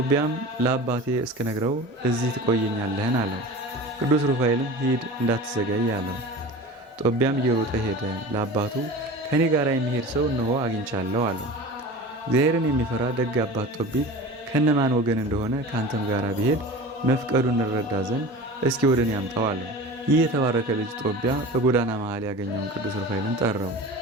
ለአባቴ እስክነግረው እዚህ ትቆየኛለህን? አለው። ቅዱስ ሩፋኤልም ሂድ እንዳትዘገይ አለው። ጦቢያም እየሮጠ ሄደ። ለአባቱ ከኔ ጋር የሚሄድ ሰው እነሆ አግኝቻለሁ አለው። እግዚአብሔርን የሚፈራ ደግ አባት ጦቢት ከነማን ወገን እንደሆነ ካንተም ጋር ቢሄድ መፍቀዱን እንረዳ ዘንድ እስኪ ወደ እኔ አምጣው አለው። ይህ የተባረከ ልጅ ጦቢያ በጎዳና መሃል ያገኘውን ቅዱስ ሩፋኤልን ጠራው።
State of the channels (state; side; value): normal; both; correlation 0.35